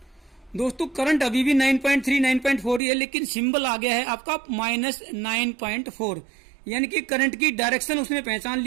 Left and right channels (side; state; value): left; drops out; at 2.8 s